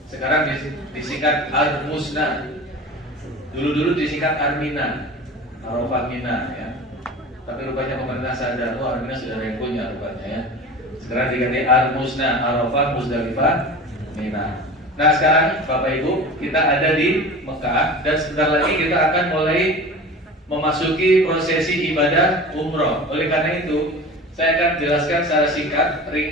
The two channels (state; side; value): normal; both; correlation 0.35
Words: Sekarang disingkat Ar-Musna. Dulu disingkat Ar-Mina. Arafah, Mina ya. Tapi rupanya pemerintah sadar, Ar-Mina sudah ada yang punya rupanya ya. Sekarang diganti Ar-Musna, Arafah, Muzdalifah, Mina. Nah sekarang Bapak Ibu, kita ada di Mekah dan sebentar lagi kita akan mulai memasuki prosesi ibadah umroh. Oleh karena itu, saya akan jelaskan secara singkat